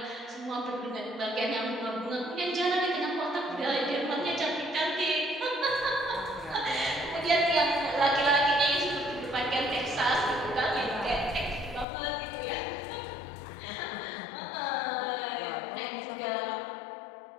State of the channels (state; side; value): drops out; right; at 11.9 s